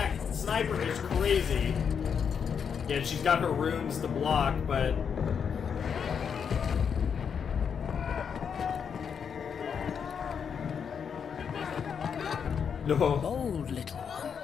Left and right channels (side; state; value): right; quieter; 7.0 dB